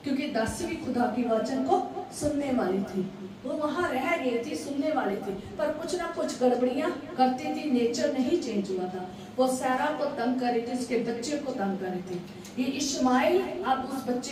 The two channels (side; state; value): both; identical; correlation 1.00